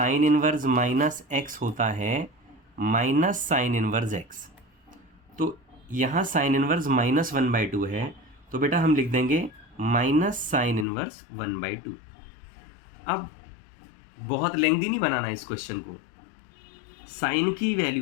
इनवर्स -x होता है माइनस साइन इनवर्स x। तो यहाँ साइन इनवर्स -1/2 है, तो बेटा हम लिख देंगे माइनस साइन इनवर्स 1/2। अब बहुत लेंथी नहीं बनाना है इस क्वेश्चन को। साइन की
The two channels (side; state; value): right; drops out; at 10.9 s